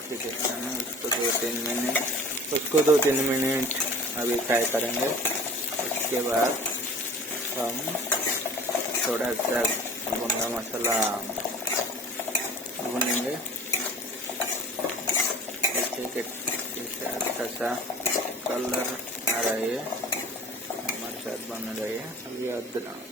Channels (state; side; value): normal; both; correlation 0.43